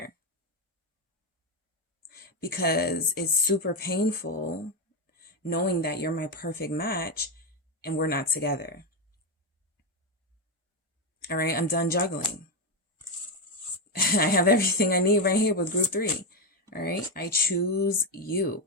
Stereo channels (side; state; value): both; normal; correlation 0.08